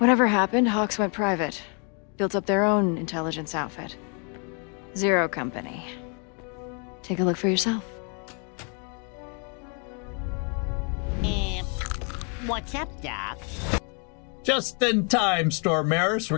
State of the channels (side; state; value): right; quieter; 38.0 dB